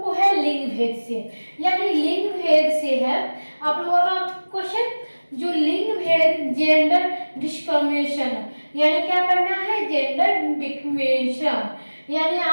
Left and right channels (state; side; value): inverted; both; correlation -1.00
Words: को है लिंग भेद से, यानी लिंग भेद से है आप लोगों का क्वेश्चन। जो लिंग भेद, जेंडर डिस्क्रिमिनेशन, यानी क्या करना है, जेंडर डिस्क्रिमिनेशन, यानी